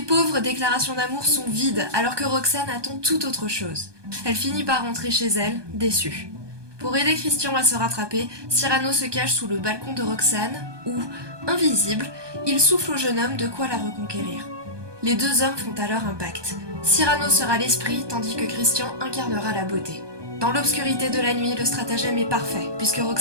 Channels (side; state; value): left; late; 1.2 ms